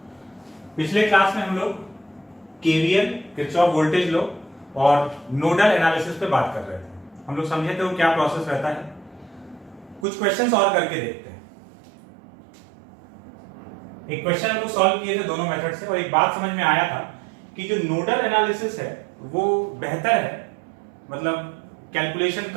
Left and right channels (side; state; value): left; drops out; at 10.1 s